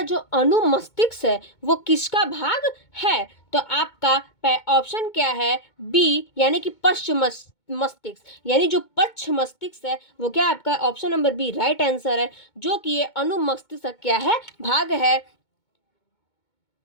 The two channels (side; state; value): right; late; 2.2 ms